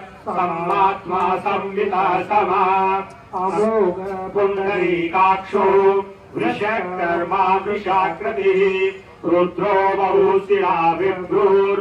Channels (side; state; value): both; identical; correlation 1.00